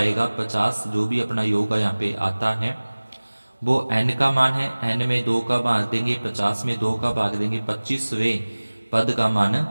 50, जो भी अपना योग यहाँ पे आता है वो n का मान है। n में 2 का भाग देंगे, 50 में 2 का भाग देंगे, 25वें पद का मान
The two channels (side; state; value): both; inverted; correlation -1.00